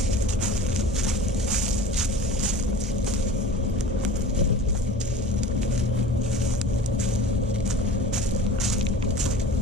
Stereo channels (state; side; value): normal; both; correlation 0.39